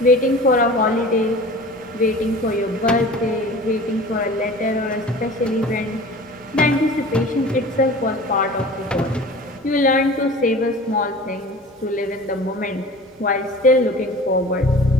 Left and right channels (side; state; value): both; normal; correlation 0.40